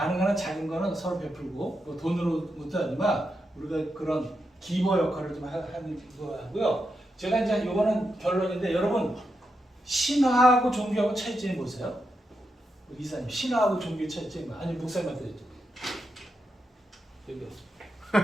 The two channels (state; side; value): normal; both; correlation 0.85